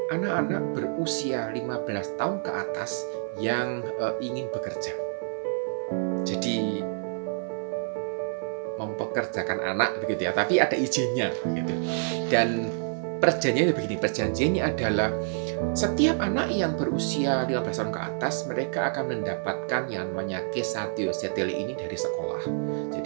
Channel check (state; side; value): silent; left; 60 dB below the other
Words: anak-anak berusia 15 tahun ke atas yang ingin bekerja. Jadi mempekerjakan anak begitu ya, tapi ada izinnya gitu. Dan perjanjiannya adalah setiap anak yang berusia 15 tahun ke atas, mereka akan mendapatkan yang namanya Kesätyöseteli ini dari sekolah.